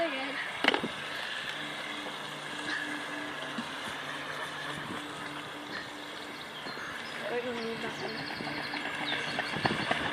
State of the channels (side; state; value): both; identical; correlation 1.00